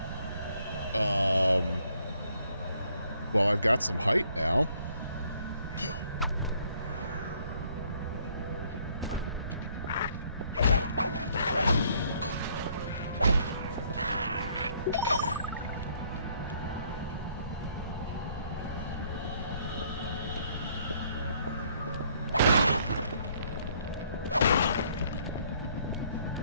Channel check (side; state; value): both; inverted; correlation -0.65